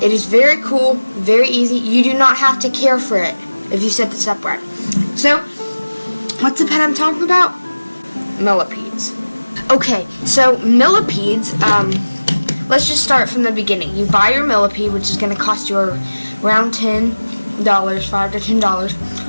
it is very cool, very easy. You do not have to care for it if you set this up right. So, what's the pet I'm talking about? Millipedes. Okay, so millipedes, let's just start from the beginning. You buy your millipede, which is going to cost you around $10, $5 to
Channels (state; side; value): inverted; both; correlation -1.00